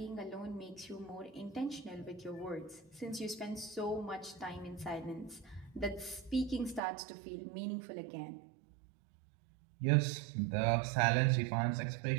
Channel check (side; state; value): left; drops out; at 6.8 s